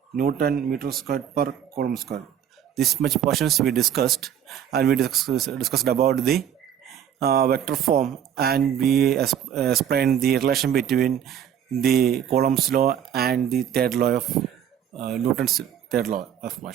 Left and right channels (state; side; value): quieter; left; 9.4 dB